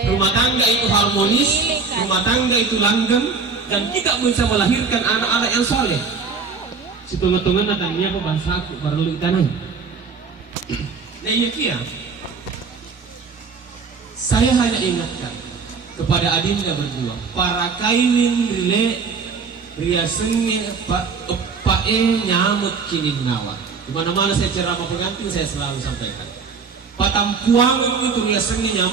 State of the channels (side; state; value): left; quieter; 5.0 dB